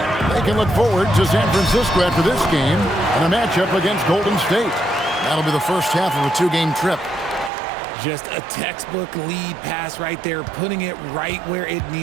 They can look forward to San Francisco after this game and a matchup against Golden State. That'll be the first half of a 2-game trip. Just a textbook lead pass right there, putting it right where it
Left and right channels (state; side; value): drops out; left; at 7.5 s